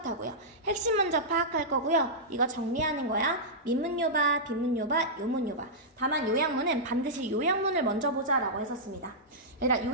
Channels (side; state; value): both; normal; correlation -0.12